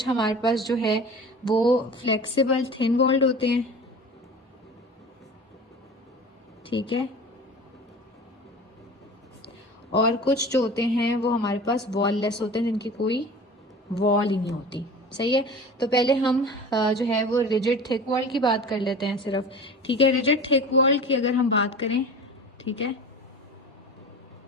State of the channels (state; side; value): normal; both; correlation 0.36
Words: हमारे पास जो है वो फ्लेक्सिबल थिन वॉल्ड होते हैं, ठीक है। और कुछ जो होते हैं वो हमारे पास वॉल लेस होते हैं, जिनकी कोई वॉल ही नहीं होती, सही है। तो पहले हम जो है वो रिजिड थिक वॉल की बात कर लेते हैं सिर्फ, ठीक है। रिजिड थिक वॉल की अगर हम बात करें, ठीक है,